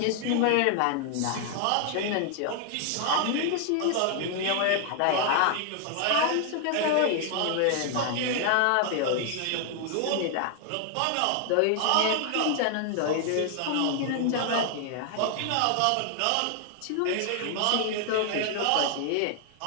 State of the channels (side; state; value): both; different; correlation 0.00